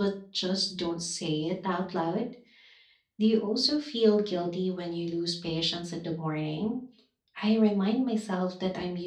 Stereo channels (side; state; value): both; identical; correlation 1.00